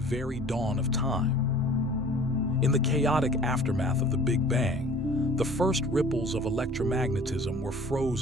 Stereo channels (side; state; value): both; normal; correlation 0.48